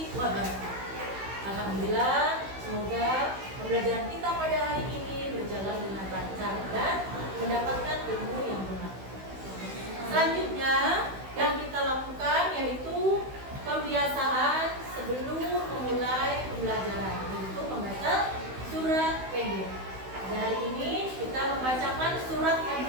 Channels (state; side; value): late; left; 16 ms